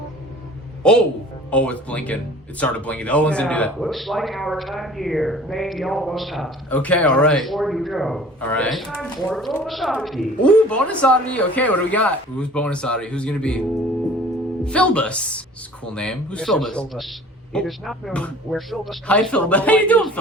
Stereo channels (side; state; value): both; normal; correlation 0.47